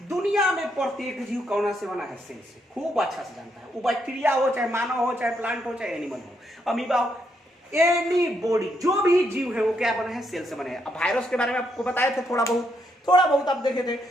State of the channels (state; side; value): normal; both; correlation 0.77